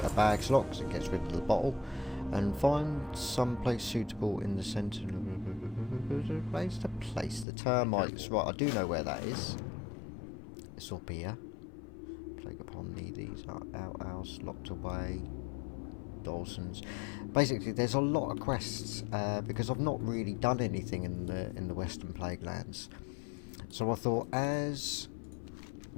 a bag slot because it gets rid of the bottle. And find some place suitable in the centre. Place to place the termites. Right, I do know where that is. It's up here. Plague upon thee. These are outhouse, locked away. Dawson's. Basically, there's a lot of quests because I've not really done anything in the Western Plaguelands. So I thought, as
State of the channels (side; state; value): right; drops out; at 7.5 s